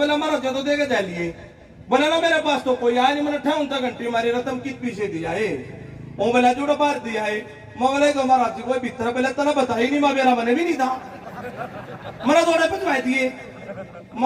महाराज जी तो देके जा लिए। बोला ना मेरे पास तो कोई आया नहीं, मैंने 58 घंटे मारी रतम किस पीछे दिया है। वो बोला जुड़ा बाहर दिया है। मैं बोला तो महाराज जी कोई भीतर पहले तना बता ही नहीं, मैं मेरा मैंने भी नहीं था, मैंने थोड़े पहुंचवाए दिए।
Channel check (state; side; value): identical; both; correlation 1.00